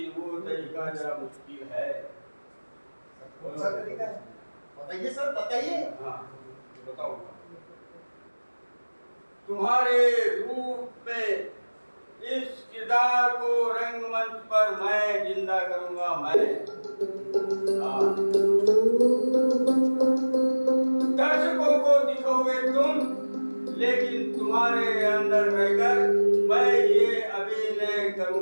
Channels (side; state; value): both; inverted; correlation -1.00